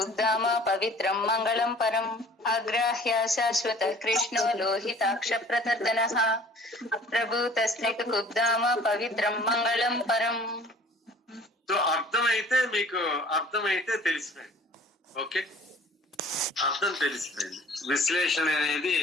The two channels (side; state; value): both; normal; correlation 0.50